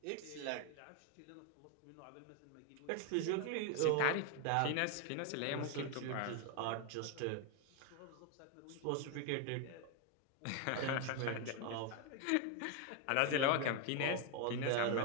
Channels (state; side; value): different; both; correlation 0.01